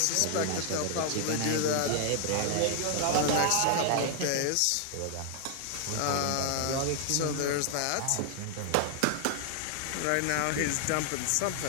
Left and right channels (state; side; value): different; both; correlation 0.00